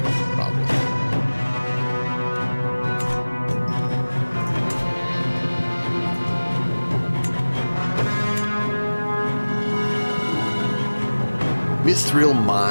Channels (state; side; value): inverted; both; correlation -1.00